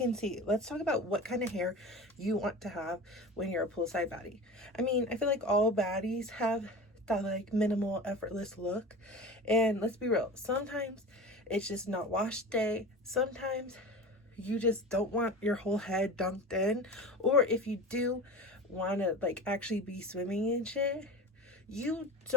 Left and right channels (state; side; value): normal; both; correlation 0.32